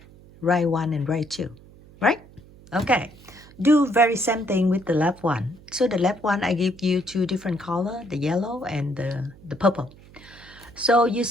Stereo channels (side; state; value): right; noise; hum, 23 dB below the sound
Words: right 1 and right 2. Right? Okay. Do very same thing with the left one. So the left one, I give you 2 different color, the yellow and the purple. So you